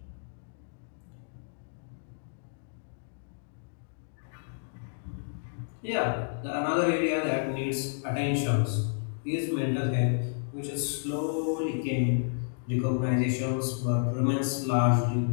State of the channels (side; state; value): right; silent; digital silence